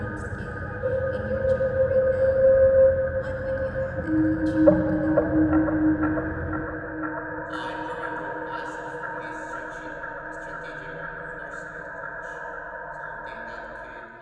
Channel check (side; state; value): both; identical; correlation 1.00